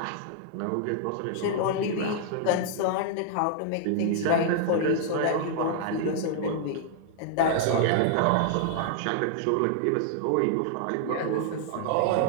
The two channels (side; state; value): both; different; correlation -0.01